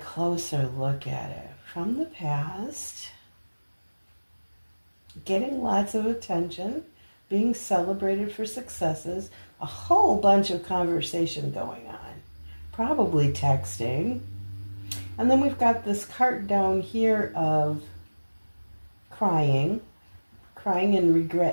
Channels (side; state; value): both; inverted; correlation -1.00